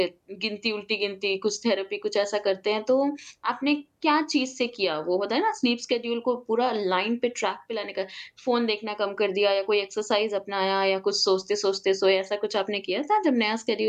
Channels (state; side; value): identical; both; correlation 1.00